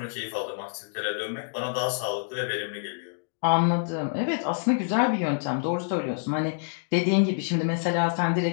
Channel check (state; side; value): silent; right; digital silence